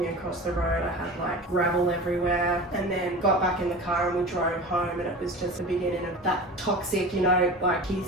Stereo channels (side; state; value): both; normal; correlation 0.34